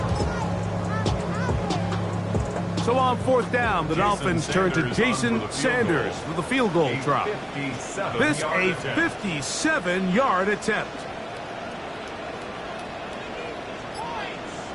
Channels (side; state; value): both; identical; correlation 1.00